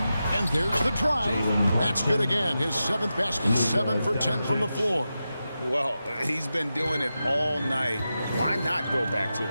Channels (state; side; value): inverted; both; correlation -0.91